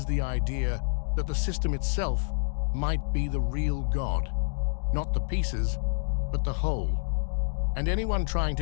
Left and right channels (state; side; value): silent; right; digital silence